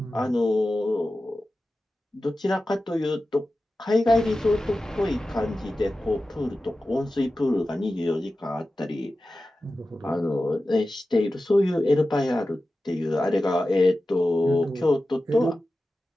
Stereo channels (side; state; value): both; normal; correlation 0.94